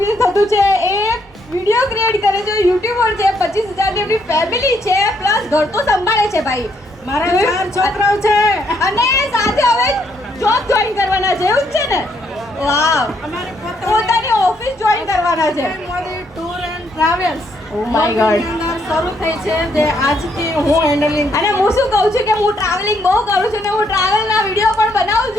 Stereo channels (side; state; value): both; normal; correlation 0.73